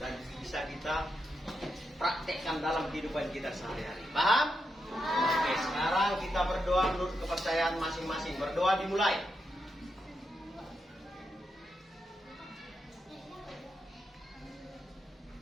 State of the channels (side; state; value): both; normal; correlation 0.85